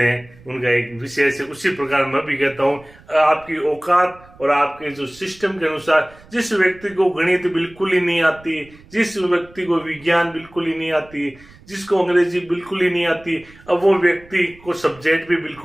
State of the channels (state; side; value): noise; right; rumble, 24 dB below the sound